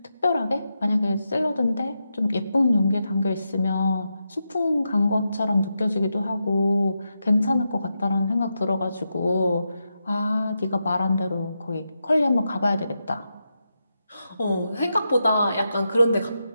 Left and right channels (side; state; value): both; inverted; correlation -0.86